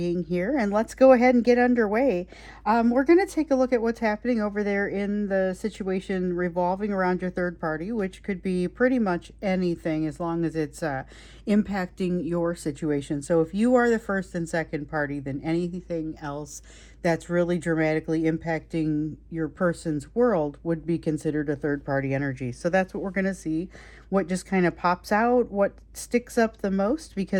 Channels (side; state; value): both; identical; correlation 1.00